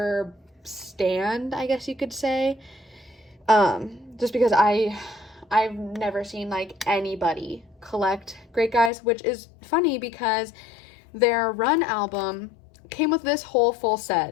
stanned, I guess you could say. Just because I've never seen like anybody collect Great Guys, which is funny because their Run album came with this whole full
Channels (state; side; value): drops out; right; at 8.9 s